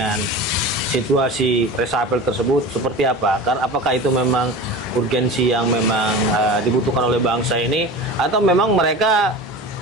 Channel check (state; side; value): normal; both; correlation 0.32